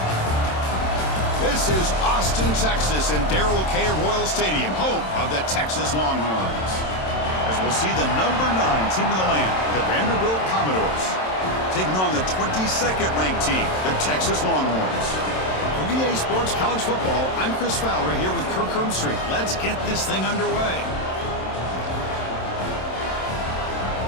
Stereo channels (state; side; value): late; right; 27 ms